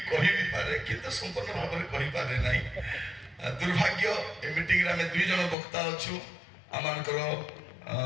କହିବି ପାରେ କିନ୍ତୁ ସମ୍ପୂର୍ଣ୍ଣ ଭାବରେ କହିପାରେ ନାହିଁ ଦୁର୍ଭାଗ୍ୟ ଏ ମିଟିଂରେ ଆମେ 2 ଜଣ ବକ୍ତା ଅଛୁ ଆମମାନଙ୍କର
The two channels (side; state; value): right; drops out; at 5.6 s